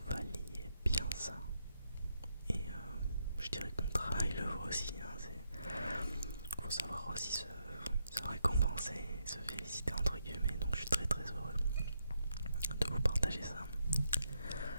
valiez bien ça. Et je dirais que mon travail le vaut aussi. Faut savoir aussi se récompenser, se féliciter entre guillemets. Donc je suis très très heureux de vous partager ça.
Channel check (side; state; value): both; inverted; correlation -0.79